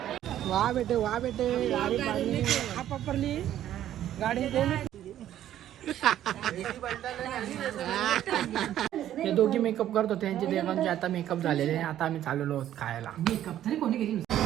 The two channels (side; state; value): left; quieter; 11.8 dB